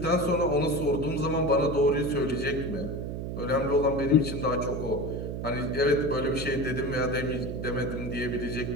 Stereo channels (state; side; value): noise; right; hum, 5 dB below the sound